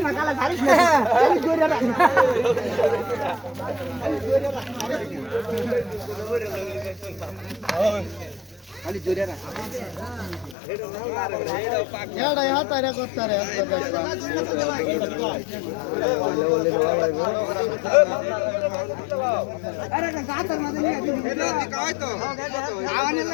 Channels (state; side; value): drops out; right; at 10.6 s